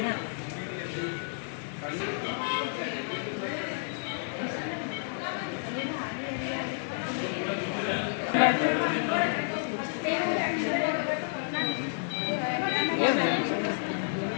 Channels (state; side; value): silent; right; digital silence